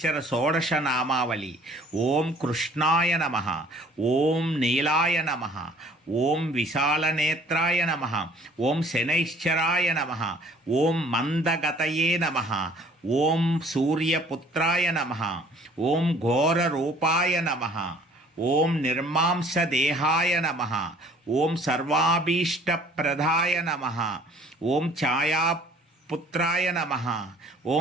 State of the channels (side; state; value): both; normal; correlation 0.55